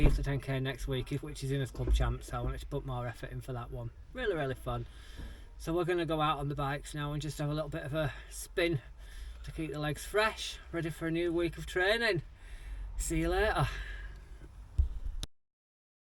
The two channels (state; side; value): identical; both; correlation 1.00